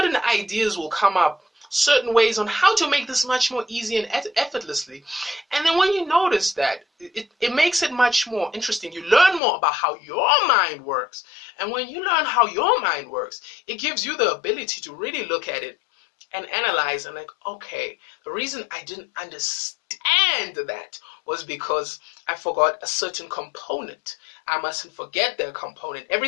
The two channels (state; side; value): drops out; right; at 9.4 s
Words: ideas will come up, certain ways on how to make this much more easy and effortlessly. And then when you notice that, it makes it much more interesting. You learn more about how your mind works. And when you learn how your mind works, it gives you the ability to really look at it and analyze and okay, the reason I didn't understand that was because I forgot a certain component. I mustn't forget that component.